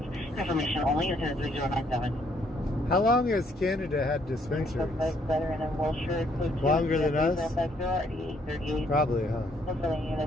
Information only, attendant 3097. How long has Canada had dispensaries? Longer than us? Probably, huh?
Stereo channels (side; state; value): both; normal; correlation 0.69